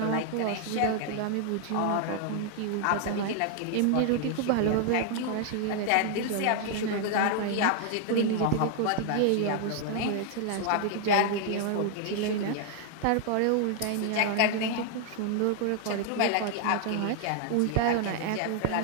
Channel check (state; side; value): different; both; correlation 0.00